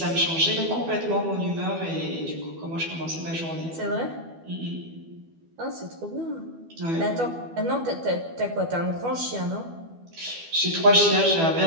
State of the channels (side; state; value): left; late; 12 ms